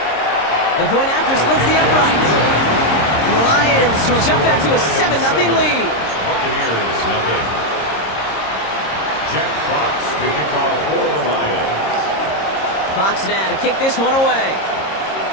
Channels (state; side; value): late; right; 26 ms